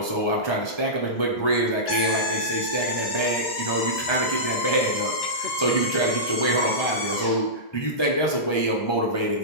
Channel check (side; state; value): right; late; 1.3 ms